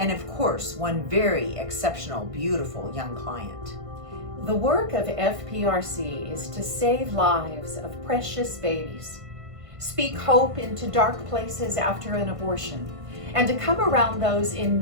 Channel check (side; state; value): left; late; 1.5 ms